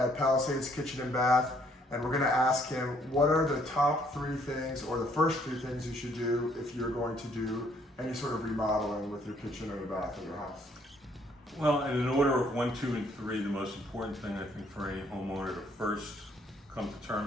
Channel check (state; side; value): normal; both; correlation 0.66